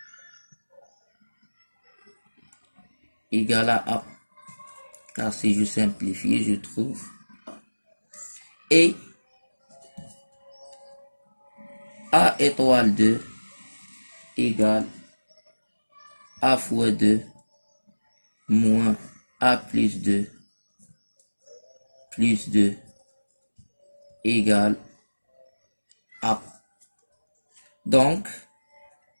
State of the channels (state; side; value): inverted; both; correlation -1.00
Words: égale à A. Car si je simplifie, je trouve et A étoile 2 égale A fois 2 moins A plus 2 égale A. Donc